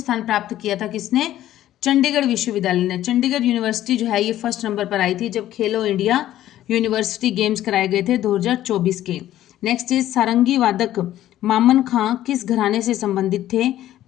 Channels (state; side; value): quieter; right; 13.2 dB